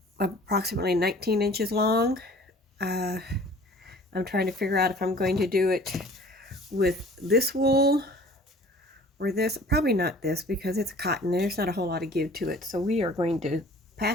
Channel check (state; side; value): normal; both; correlation 0.49